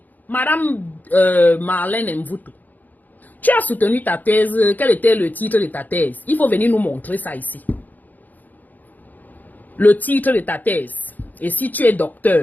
Madame Marlène Mvuto, tu as soutenu ta thèse. Quel était le titre de ta thèse? Il faut venir nous montrer ça ici. Le titre de ta thèse. Et si tu es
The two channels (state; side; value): late; right; 0.083 ms